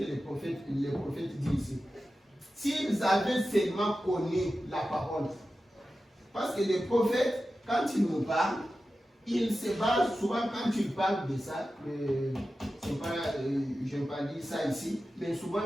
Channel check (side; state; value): both; normal; correlation 0.93